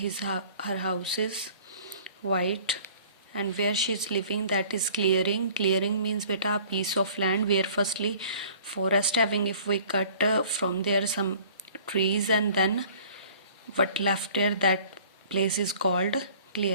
house is white, and where she is living, that is clearing means beta a piece of land where firstly forest having, if we cut from there some trees and then what left there, that place is called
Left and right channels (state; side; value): inverted; both; correlation -0.50